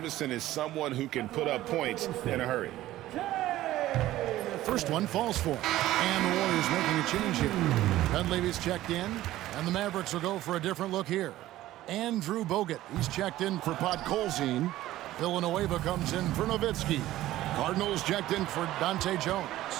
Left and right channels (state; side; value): quieter; left; 15.1 dB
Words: is someone who can put up points in a hurry. First one falls for him. And the Warriors making a change here. Dunleavy's checked in, and the Mavericks will go for a different look here. Andrew Bogut, he's checked in for Podkolzin. Villanueva comes in for Nowitzki. Cardinals checked in for Dante Jones.